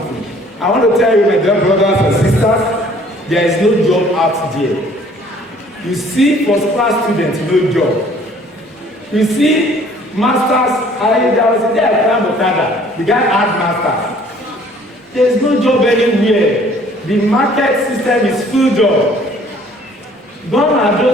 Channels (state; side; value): normal; both; correlation 0.56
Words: I want to tell you, my dear brothers and sisters, there is no job out there. You see first-class students, no job. You see masters, there was a day I climbed Okada. The guy had masters. There is no job anywhere. The market system is full job. Gone are